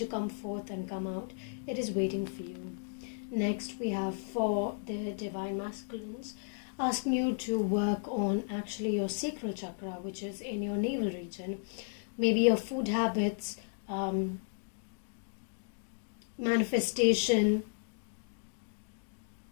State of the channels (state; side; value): silent; right; digital silence